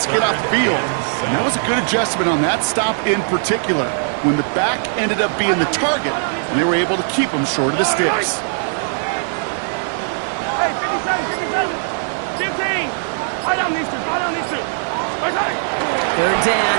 to get off the field. And that was a good adjustment on that stop in particular, when the back ended up being the target, and they were able to keep him short of the sticks. Hey, 57. 15. I don't need to. 3rd down,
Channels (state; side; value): silent; left; 61 dB below the other